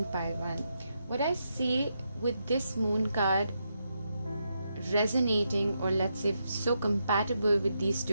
pile 1, what I see with this moon card resonating, or let's say so compatible with these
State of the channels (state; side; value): inverted; both; correlation -0.83